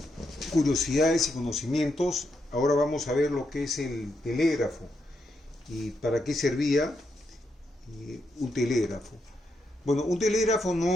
curiosidades y conocimientos, ahora vamos a ver lo que es el telégrafo y para qué servía un telégrafo. Bueno, un telégrafo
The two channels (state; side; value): normal; both; correlation 0.81